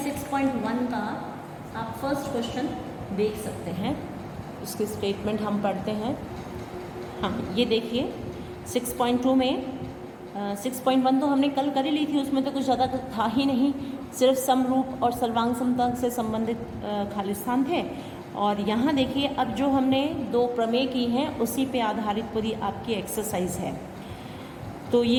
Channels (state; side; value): identical; both; correlation 1.00